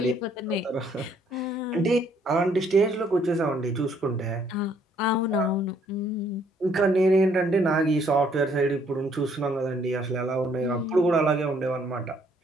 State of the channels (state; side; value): normal; both; correlation 0.66